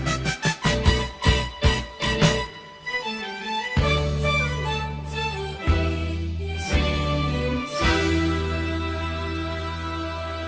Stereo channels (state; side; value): identical; both; correlation 1.00